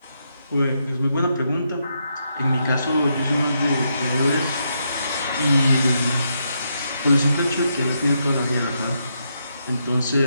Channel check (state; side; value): inverted; both; correlation -0.80